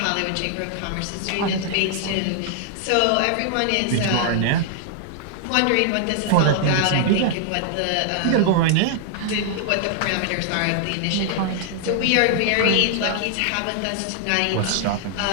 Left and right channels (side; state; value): both; different; correlation -0.01